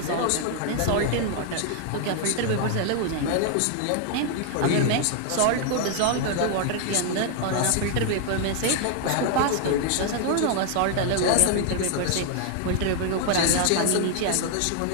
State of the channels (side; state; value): both; different; correlation 0.00